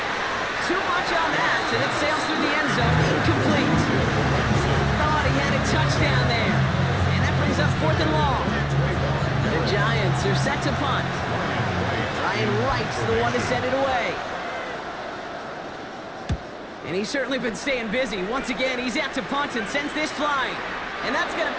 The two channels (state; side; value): identical; both; correlation 1.00